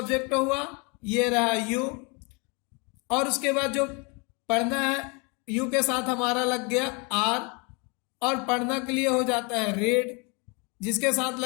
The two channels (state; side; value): quieter; right; 31.5 dB